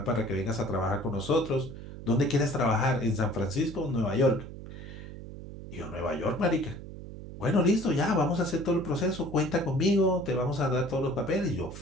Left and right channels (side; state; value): right; noise; hum, 12 dB below the sound